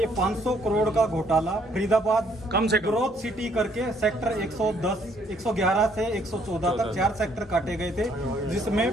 500 करोड़ का घोटाला फरीदाबाद कम से कम ग्रोथ सिटी करके सेक्टर 111 से 114 तक 4 सेक्टर काटे गए थे, जिसमें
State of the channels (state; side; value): normal; both; correlation 0.66